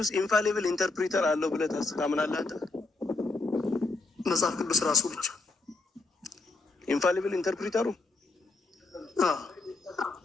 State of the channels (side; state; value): right; quieter; 3.5 dB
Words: ኢንፋሊብል ኢንተርፕሪተር አለው ብለህ ታምናለህ አንተ? መጽሐፍ ቅዱስ ራሱ ብቻ ኢንፋሊብል ኢንተርፕሪተሩ